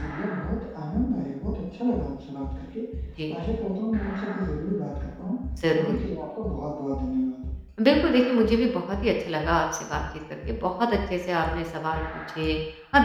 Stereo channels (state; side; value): identical; both; correlation 1.00